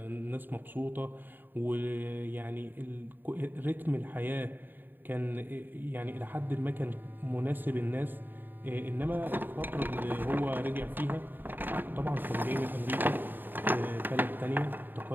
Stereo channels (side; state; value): left; late; 0.092 ms